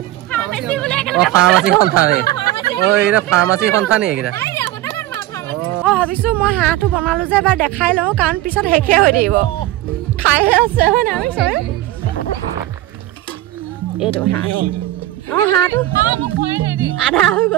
ফাৰ্মাচী সন্থা নে এইকেইটা ফাৰ্মাচী সন্থা নি এইকেইটা ভাবিছো মই হাঁহটো বনালো যে এবাৰ দেখাই লওঁ কাৰণ পিছত শেষে হৈ থাকিব খাইহে আছে হয় নাই এইটো হাঁহ হাঁহটো আধা হৈ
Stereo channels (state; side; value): quieter; left; 15.4 dB